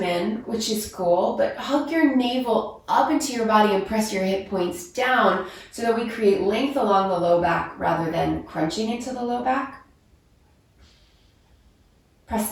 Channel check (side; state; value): both; identical; correlation 1.00